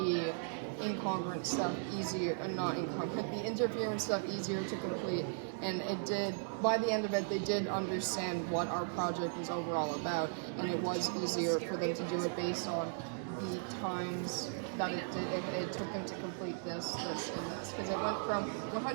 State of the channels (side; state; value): left; silent; 53 dB below the other